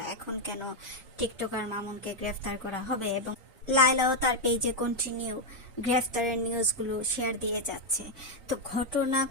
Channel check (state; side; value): normal; both; correlation 0.01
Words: এখন কেন টিকটকার মামুনকে গ্রেফতার করা হবে? এবং লায়লাও তার পেজে কন্টিনিউ গ্রেফতারের নিউজগুলো শেয়ার দিয়ে যাচ্ছে। তো ঘটনা